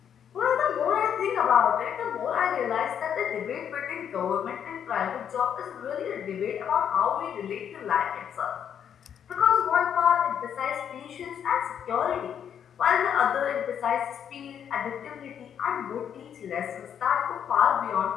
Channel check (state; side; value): quieter; right; 8.6 dB